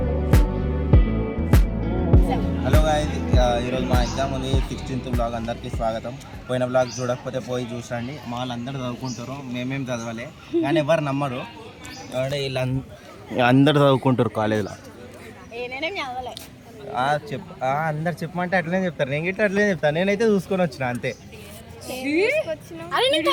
హలో గాయ్స్, ఈరోజు మా ఎగ్జామ్ ఉంది 16th బ్లాగ్. అందరికీ స్వాగతం. పోయిన బ్లాగ్ చూడకపోతే పోయి చూసండి. మా వాళ్ళందరూ చదువుకుంటారు, మేమేం చదవాలి కానీ ఎవరు నమ్మరు. వీళ్ళు అందరు చదువుకుంటారు కాలేజ్లో. అందరు చెప్పమంటే అట్లనే చెప్తారు, నేను గిట్ట అట్లనే చెప్తాను. నేనైతే చూసుకొని వచ్చిన అంతే.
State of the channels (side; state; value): both; identical; correlation 1.00